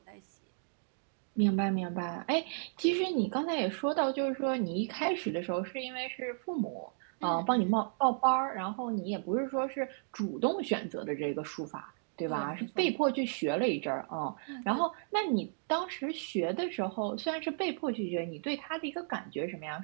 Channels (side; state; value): left; silent; digital silence